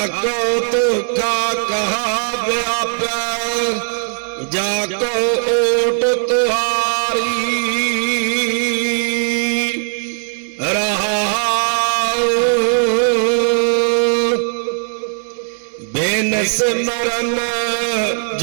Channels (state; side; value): silent; left; digital silence